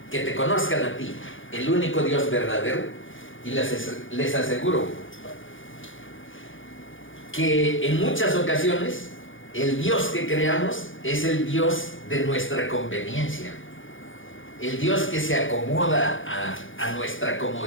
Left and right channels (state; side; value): late; right; 0.57 ms